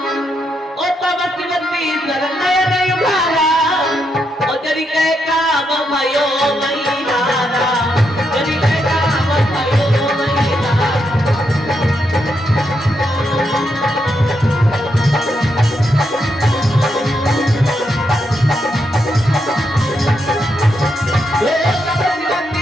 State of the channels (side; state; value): both; normal; correlation 0.81